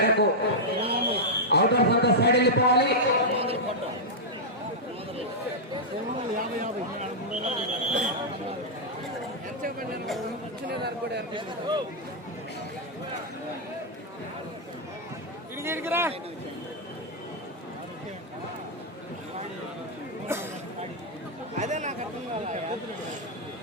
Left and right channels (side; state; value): both; normal; correlation -0.06